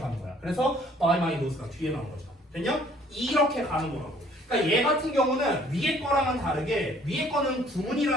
거야. 그래서 by my nose가 뒤에 나온 거죠. 됐냐? 이렇게 가는 거라고. 그러니까 얘 같은 경우는 위에 거랑은 다르게 위에 거는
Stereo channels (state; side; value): normal; both; correlation 0.59